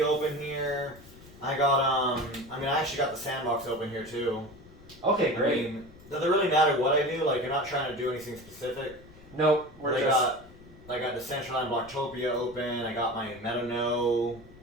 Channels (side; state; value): left; noise; rumble, 21 dB below the sound